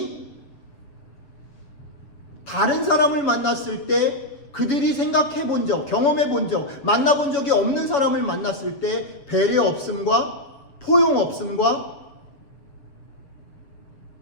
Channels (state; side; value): late; right; 7.1 ms